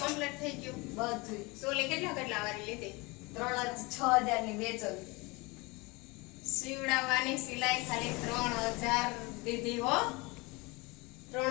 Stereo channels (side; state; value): right; quieter; 25.4 dB